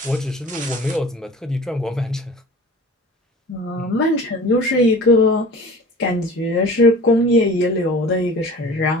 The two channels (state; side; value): normal; both; correlation 0.41